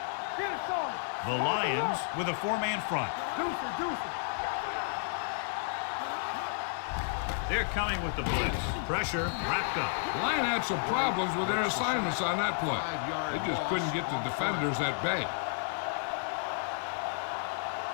Get it started. The Lions with a four-man front. Deuce it. They're coming with the blitz. Pressure wrapped up. The Lions had some problems with their assignments on that play. They just couldn't get the defenders at bay.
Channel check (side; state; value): right; silent; 56 dB below the other